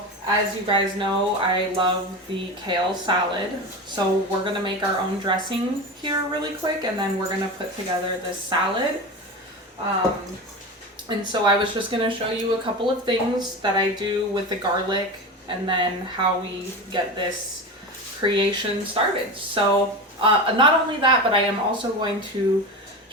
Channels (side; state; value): both; normal; correlation 0.26